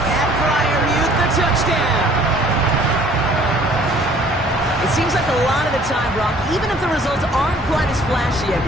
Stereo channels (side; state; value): both; normal; correlation 0.55